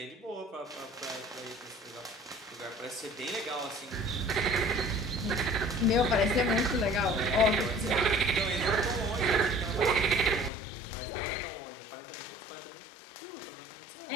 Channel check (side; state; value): right; drops out; at 10.5 s